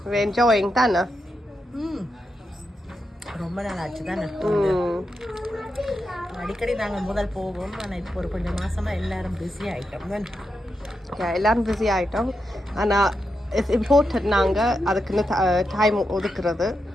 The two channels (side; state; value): both; normal; correlation 0.86